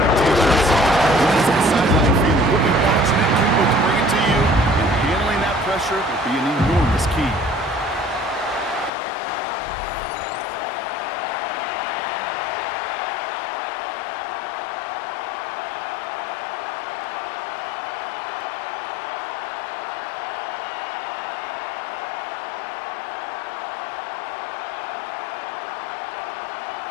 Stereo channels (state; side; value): drops out; right; at 8.9 s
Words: What is that sideline feeling? We'll be watching it, people to bring it to you, and handling that pressure will be an enormous key.